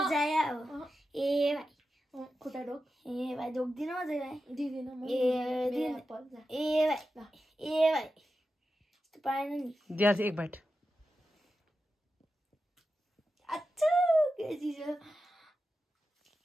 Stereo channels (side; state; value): both; normal; correlation 0.91